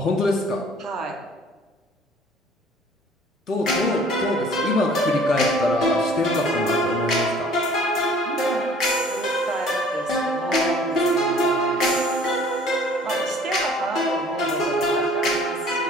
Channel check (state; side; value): normal; both; correlation 0.52